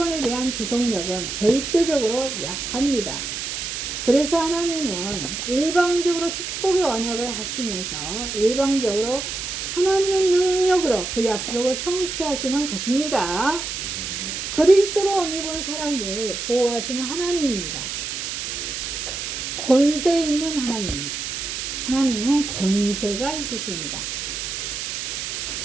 대한 지속력은 절대적으로 약합니다. 그래서 하나님은 일방적으로 축복의 언약을 하시면서 일방적으로 하나님의 능력으로 그 약속을 성취하시는 것입니다. 그리스도로 옷 입은 사람들 보호하시는 하나님입니다. 권세 있는 하나님입니다. 하나님은 권세가 있으십니다.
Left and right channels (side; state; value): right; noise; hiss, 5 dB below the sound